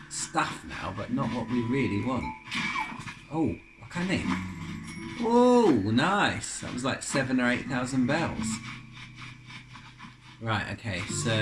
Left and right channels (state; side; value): identical; both; correlation 1.00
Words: stuff now, but not what we really want. Oh, what can they? Oh, nice. That was like 7,000 or 8,000 bells. Right, okay, so...